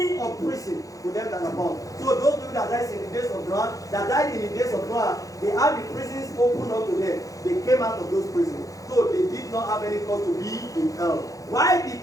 of prison to them that are bound. So those people that died in the days of Noah, they had the prisons opened up to them. They came out of those prisons. So they did not have any cause to be in hell. Why did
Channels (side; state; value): right; late; 0.17 ms